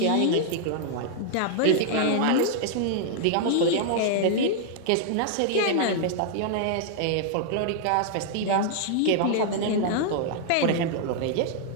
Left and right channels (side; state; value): both; different; correlation -0.01